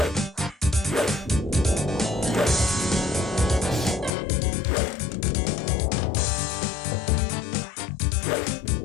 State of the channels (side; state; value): right; drops out; at 4.1 s